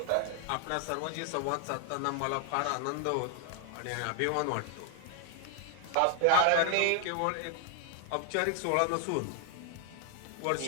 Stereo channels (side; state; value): both; different; correlation 0.00